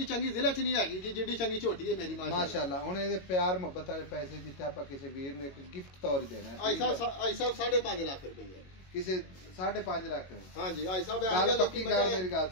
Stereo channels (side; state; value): right; late; 21 ms